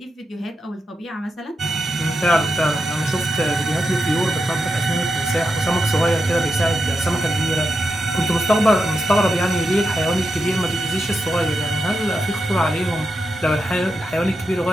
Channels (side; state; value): both; normal; correlation 0.87